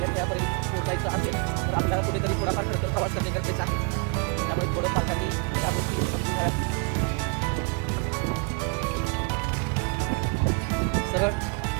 ध्येयापर्यंत पोहोचायचं असेल तर आपल्याला कुठेतरी थोडाफार खडतर प्रवास करणे गरजेचं आहे. त्यामुळे थोडं पालकांनी त्या गोष्टी समजून घ्याव्यात. सरळ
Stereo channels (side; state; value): left; quieter; 33.9 dB